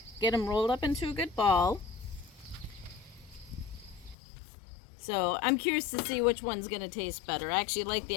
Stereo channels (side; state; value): right; drops out; at 4.2 s